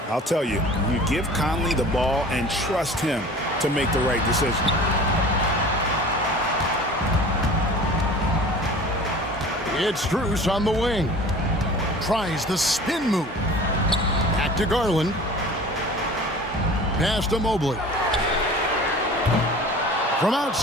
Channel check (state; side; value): normal; both; correlation 0.42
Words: I'll tell you, you give Conley the ball and trust him to make the right decision. It's Strus on the wing. Tries the spin move. Back to Garland. Pass to Mobley. From